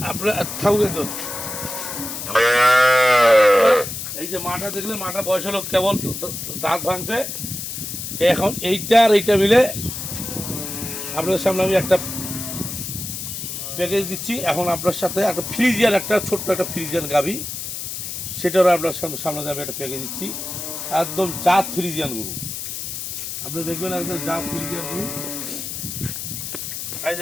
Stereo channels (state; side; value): noise; left; hiss, 6 dB below the sound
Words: আপনার থাকুন, এই যে মাটা দেখলে মাটা বয়স হলো কেবল দাঁত ভাঙছে। এখন এইটা আর এইটা মিলে আপনাদের সামনে আমি একটা প্যাকেজ দিচ্ছি। এখন আপনার সাথে একটা ফ্রিজিয়ান, একটা ছোট্ট একটা ফ্রিজিয়ান গাভি, সেটারও আপনার সামনে আমি একটা প্যাকেজ দিচ্ছি। একদম জাত ফ্রিজিয়ান গরু, আপনি দেখবেন একদম জাত ফ্রিজিয়ান গরু। এই যে